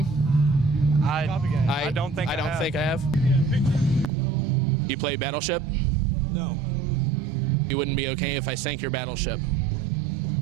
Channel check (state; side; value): drops out; left; at 4.1 s